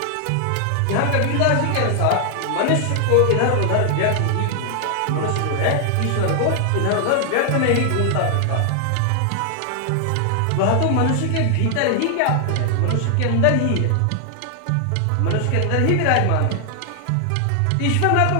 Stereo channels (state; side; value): different; both; correlation 0.00